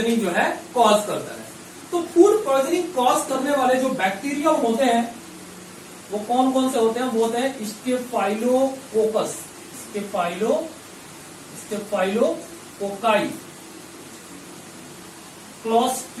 जो है कॉज करता है। तो फूड पॉइजनिंग कॉज करने वाले जो बैक्टीरिया होते हैं वो कौन कौन से होते हैं? वो होते हैं स्टेफाइलोकोकस, स्टेफाइलोकोकाई,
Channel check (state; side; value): identical; both; correlation 1.00